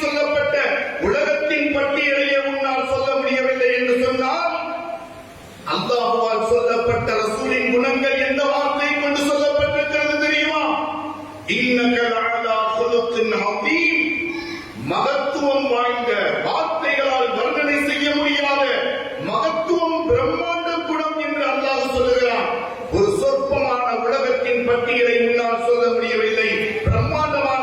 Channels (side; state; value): both; identical; correlation 1.00